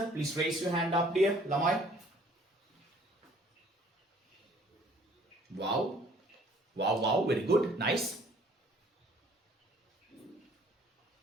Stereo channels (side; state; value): both; normal; correlation 0.57